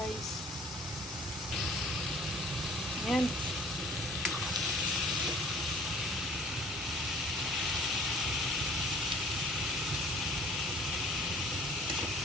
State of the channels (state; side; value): normal; both; correlation 0.52